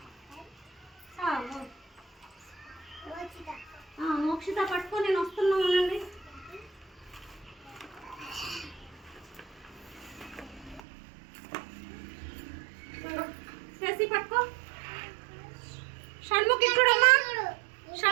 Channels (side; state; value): left; drops out; at 10.8 s